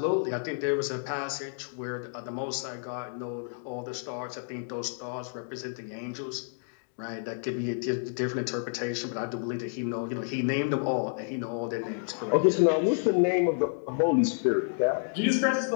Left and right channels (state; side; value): silent; right; digital silence